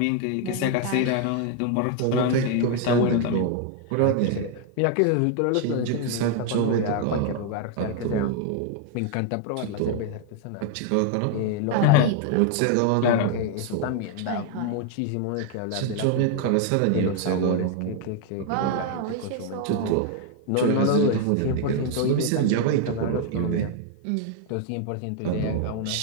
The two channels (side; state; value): both; different; correlation 0.00